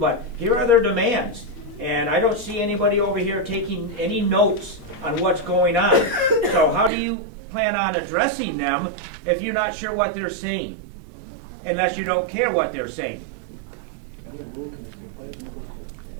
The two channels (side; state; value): left; drops out; at 6.9 s